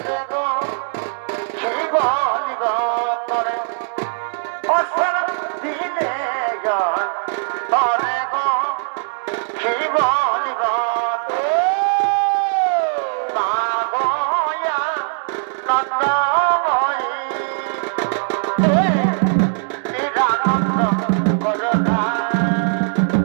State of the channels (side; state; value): left; silent; 66 dB below the other